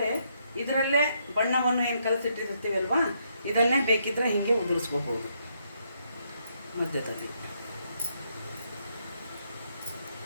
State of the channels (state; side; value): inverted; both; correlation -0.75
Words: ಇದರಲ್ಲೇ ಬಣ್ಣವನ್ನು ಏನು ಕಲಸಿಟ್ಟಿರ್ತೀವಲ್ವಾ, ಇದನ್ನೇ ಬೇಕಿದ್ದರೆ ಹೀಗೆ ಉದುರಿಸ್ಕೋಬೋದು.